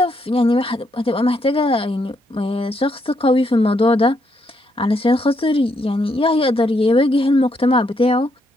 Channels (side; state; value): both; normal; correlation 0.76